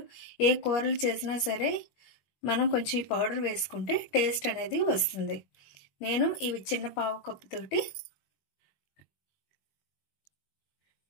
ఏ కూరలు చేసినా సరే మనం కొంచెం ఈ పౌడర్ వేసుకుంటే టేస్ట్ అనేది వస్తుంది. నేను ఇవి చిన్న పావు కప్పు తోటి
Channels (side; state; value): right; late; 21 ms